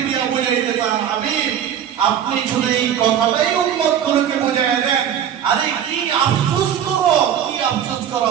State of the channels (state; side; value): quieter; left; 9.3 dB